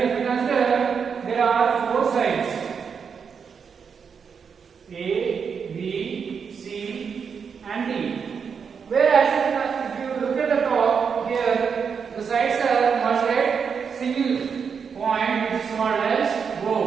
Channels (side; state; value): left; quieter; 6.3 dB